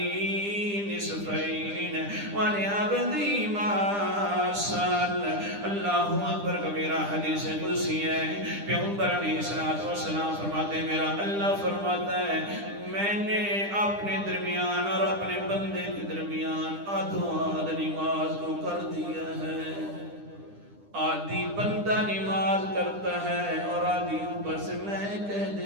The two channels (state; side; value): late; left; 9.9 ms